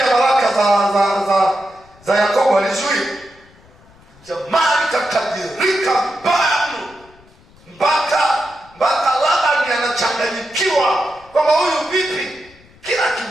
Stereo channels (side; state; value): left; noise; rumble, 27 dB below the sound